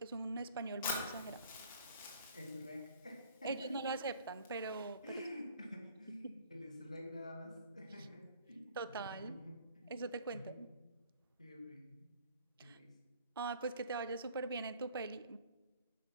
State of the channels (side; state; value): both; inverted; correlation -0.55